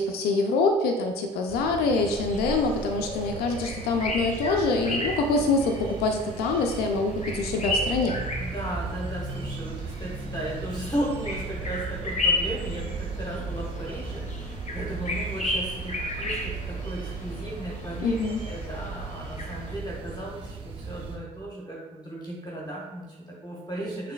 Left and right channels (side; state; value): both; normal; correlation 0.40